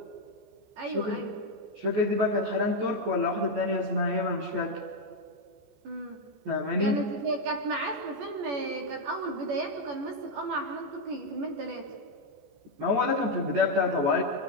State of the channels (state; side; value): late; left; 14 ms